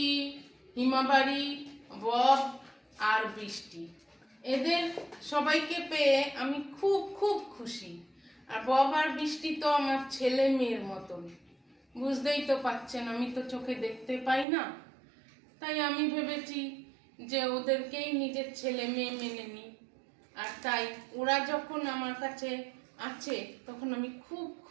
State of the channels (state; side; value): drops out; left; at 14.5 s